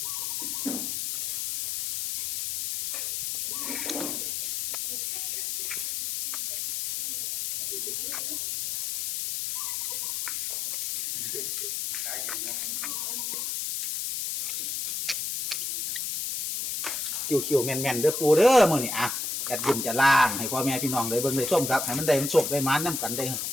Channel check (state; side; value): noise; left; hiss, 2 dB below the sound